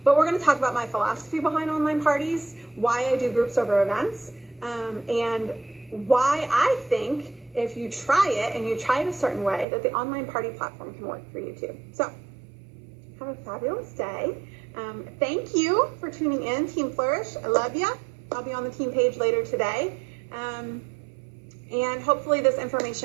But we're going to talk about my philosophy behind online parties, why I do groups over events, and why I think if you try it and you try it a certain way, that the online party platform can work for you too. So, have a fabulous day. Thank you for tuning in, Team Flourish. I love you. I'll be on the team page later today. And hopefully this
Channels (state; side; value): drops out; left; at 9.7 s